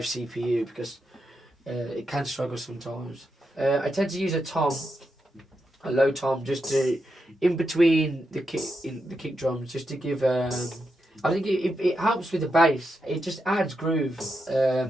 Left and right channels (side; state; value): both; normal; correlation 0.85